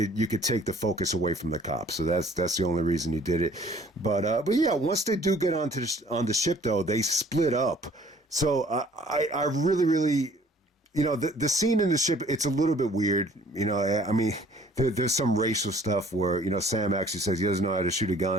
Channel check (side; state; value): both; normal; correlation 0.55